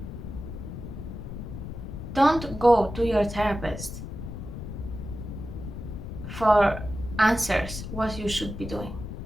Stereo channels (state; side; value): noise; left; rumble, 8 dB below the sound